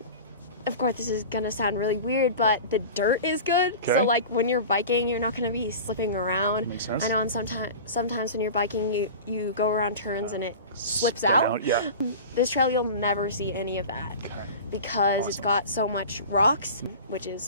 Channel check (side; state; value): both; inverted; correlation -0.34